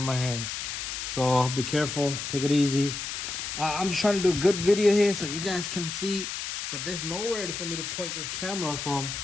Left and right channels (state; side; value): noise; left; hiss, 5 dB below the sound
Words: my hand. So be careful. Take it easy. I'm just trying to do a good video here so you guys can see. But there's nowhere for me to point this camera from